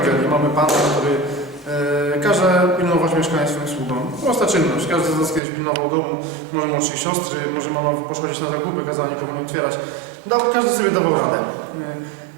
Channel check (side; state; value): left; drops out; at 5.4 s